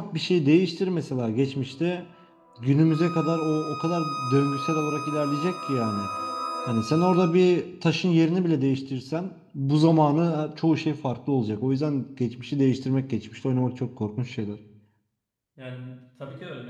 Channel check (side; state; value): both; identical; correlation 1.00